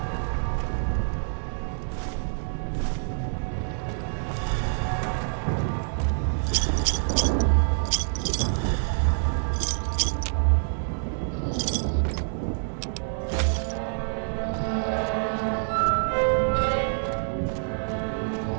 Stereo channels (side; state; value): left; silent; digital silence